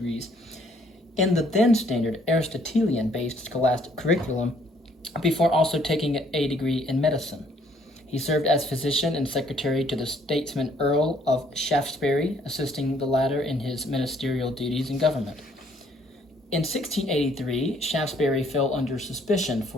in the then standard Aristotelian-based scholastic curriculum, before also taking a degree in medicine. He served as physician and secretary to the statesman Earl of Shaftesbury, assisting the latter in his ministerial duties in government. In 1683, Shaftesbury fell under suspicion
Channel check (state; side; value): normal; both; correlation 0.64